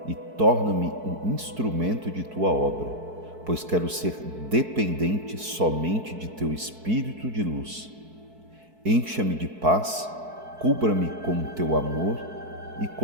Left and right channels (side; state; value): left; late; 4.6 ms